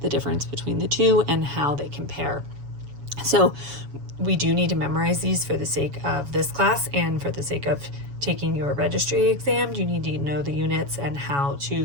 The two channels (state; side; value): late; left; 7.1 ms